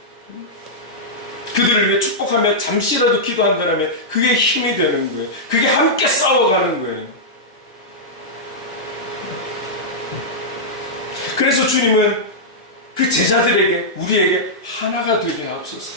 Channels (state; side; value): normal; both; correlation -0.10